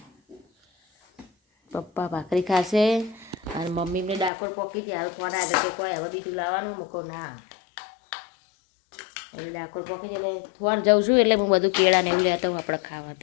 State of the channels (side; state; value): right; drops out; at 4.3 s